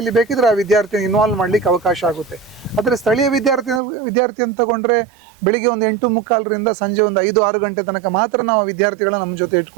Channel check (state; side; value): drops out; left; at 3.8 s